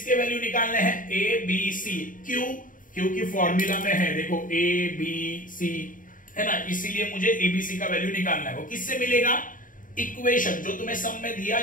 वैल्यू निकालने हैं? A B C. क्यों? क्योंकि फॉर्मूला में है, देखो ए बी सी है ना, इसीलिए मुझे एबीसी का वैल्यू निकालना है। वो किससे मिलेगा? इक्वेशन, जो तुम्हें सम में दिया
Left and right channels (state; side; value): late; right; 0.39 ms